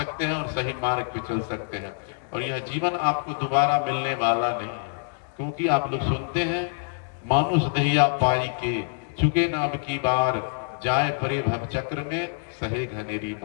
हैं और सही मार्ग पे चल सकते हैं। और यह जीवन आपको दोबारा मिलने वाला नहीं है, क्योंकि आप लोग सुनते हैं मानुष दहिया पाई के चुके न अब की बार, जाए परे भव चक्र में सहे घनेरी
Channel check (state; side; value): silent; right; digital silence